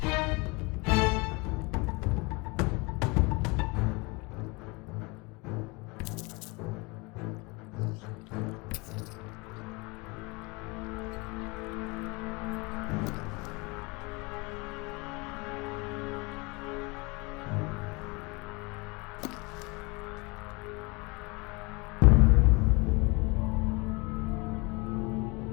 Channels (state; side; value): quieter; right; 27.2 dB